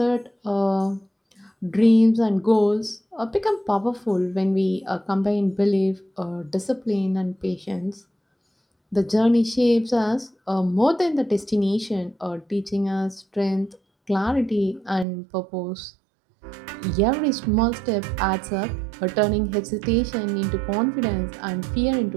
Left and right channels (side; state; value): left; drops out; at 15.1 s